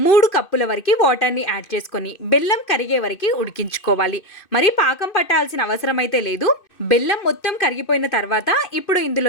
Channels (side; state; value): right; late; 2.6 ms